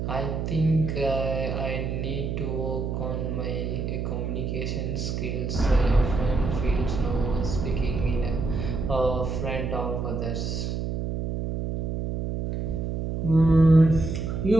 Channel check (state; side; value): noise; right; hum, 2 dB below the sound